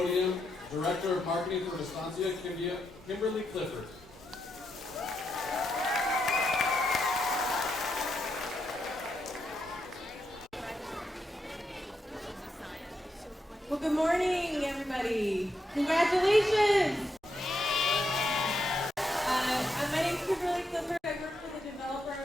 Director of Marketing for Vistancia, Kimberly Clifford. Well, good morning, everybody. Congratulations. My name is Kimberly Clifford. I work for the developer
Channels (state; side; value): normal; both; correlation 0.82